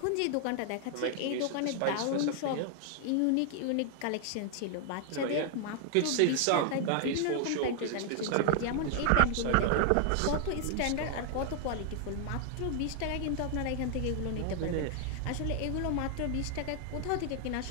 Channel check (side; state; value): both; different; correlation 0.00